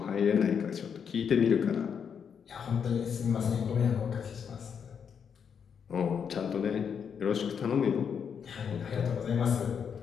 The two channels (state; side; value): quieter; right; 7.1 dB